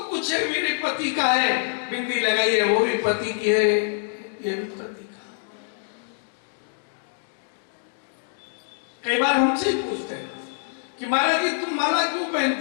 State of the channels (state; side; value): silent; right; digital silence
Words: कुछ है मेरे पति का है, बिंदी लगाई है वो भी पति की है, ये भी पति का। कई बार हमसे ही पूछते हैं कि महाराज जी तुम माला क्यों